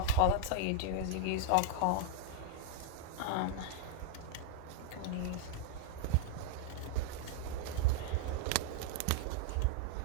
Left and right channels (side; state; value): both; different; correlation 0.00